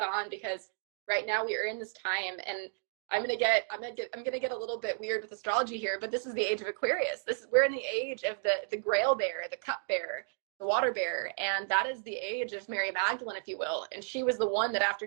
on, because right now we are in this time, and I'm gonna get a little bit weird with astrology here, but this is the age of Aquarius. We're in the age of the Grail bearer, the cup bearer, the water bearer, and that is the age of Mary Magdalene, if you will. And she was the one that, after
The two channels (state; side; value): silent; left; digital silence